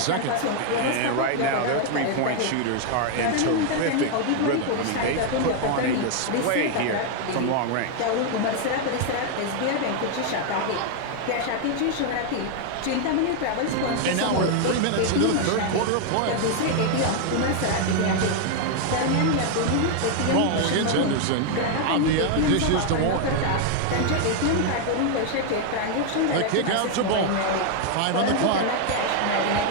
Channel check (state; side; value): different; both; correlation 0.00